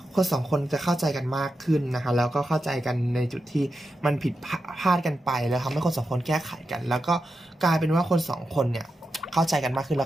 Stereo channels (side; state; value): both; normal; correlation 0.89